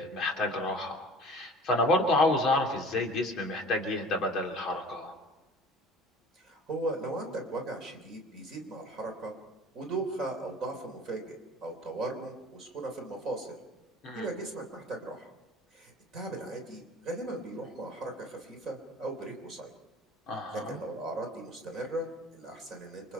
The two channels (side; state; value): both; normal; correlation 0.45